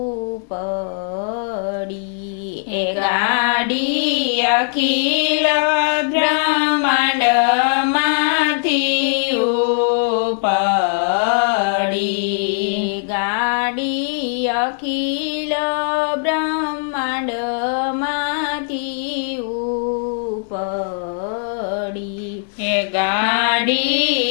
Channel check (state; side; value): silent; right; digital silence